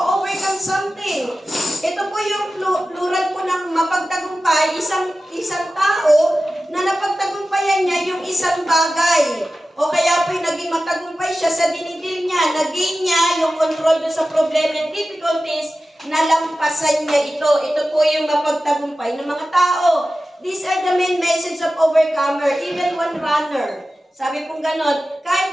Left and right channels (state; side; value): normal; both; correlation 0.94